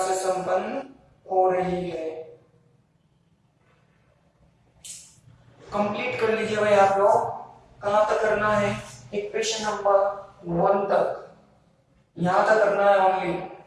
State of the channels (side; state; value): both; identical; correlation 1.00